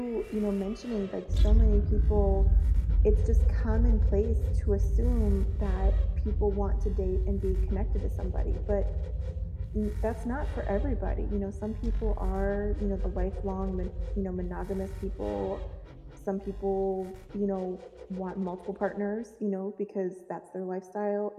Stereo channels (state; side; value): identical; both; correlation 1.00